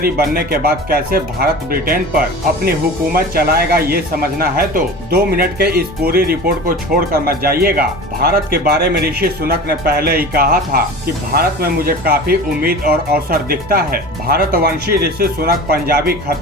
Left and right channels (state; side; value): normal; both; correlation 0.36